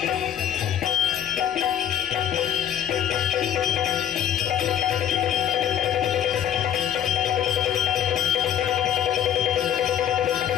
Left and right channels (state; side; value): quieter; right; 9.9 dB